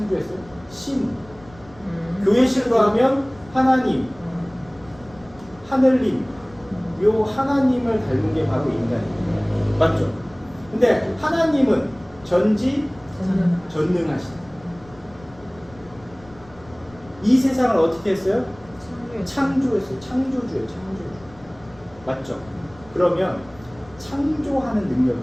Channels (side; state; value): left; noise; rumble, 23 dB below the sound